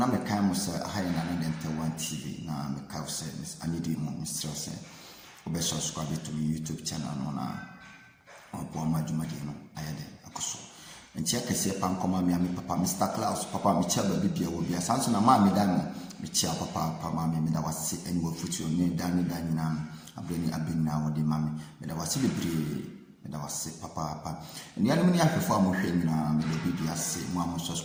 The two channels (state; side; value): identical; both; correlation 1.00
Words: a kind of high and one TV now, make cow service. I need you, Mr. Say, or subscribe to my YouTube channel on Poma Jumadino. I had a coso. And check a say, Pam, come me, Papa, Mr. Klaus, Papa, Michel, baby, will be a son of Mammy Diamond, Michel, Papa, Mammy, that was sick and will put your name down in Dining. I've been now with the mammy, but I was silly. I was sick, Papa. And the enemy I perform with him now, maybe I say, Mamma